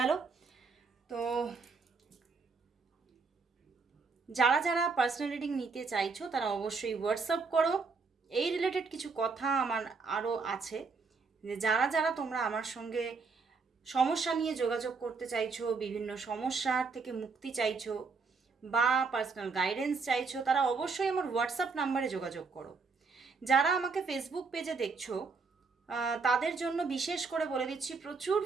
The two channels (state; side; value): quieter; left; 4.6 dB